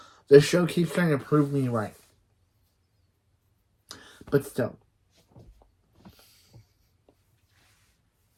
The show keeps trying to prove me right. But still.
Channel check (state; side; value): identical; both; correlation 1.00